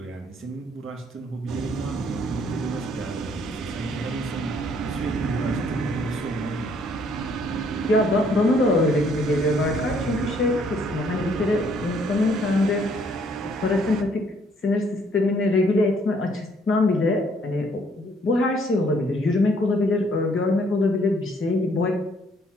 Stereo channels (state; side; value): normal; both; correlation 0.64